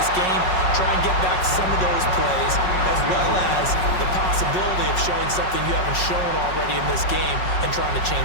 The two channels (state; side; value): late; right; 5.4 ms